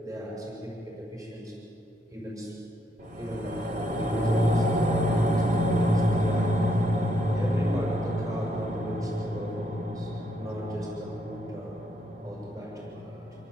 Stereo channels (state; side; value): normal; both; correlation 0.75